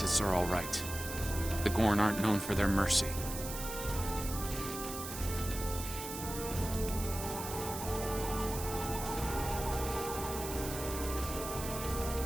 are all right. The Gorn aren't known for their mercy.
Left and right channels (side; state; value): right; noise; hiss, 8 dB below the sound